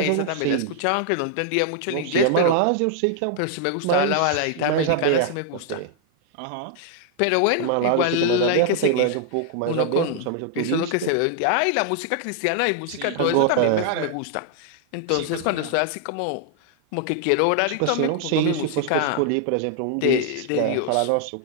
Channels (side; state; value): both; different; correlation 0.00